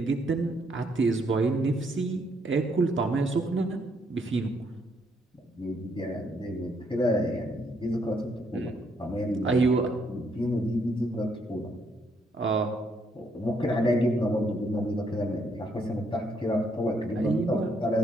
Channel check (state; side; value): normal; both; correlation 0.72